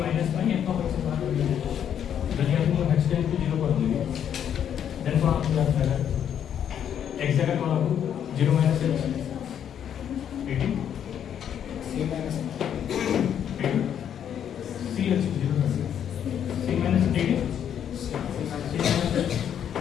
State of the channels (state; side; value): quieter; right; 9.1 dB